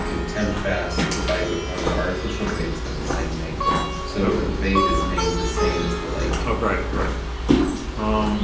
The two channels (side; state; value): both; identical; correlation 1.00